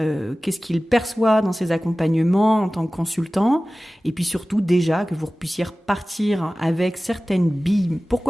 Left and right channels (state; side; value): normal; both; correlation 0.97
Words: qu'il perçoit dans ses accompagnements en tant que consultant, et puis surtout déjà que vous puissiez repartir avec certaines billes,